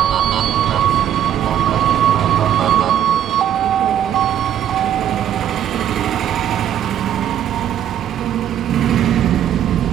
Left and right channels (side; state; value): left; quieter; 10.3 dB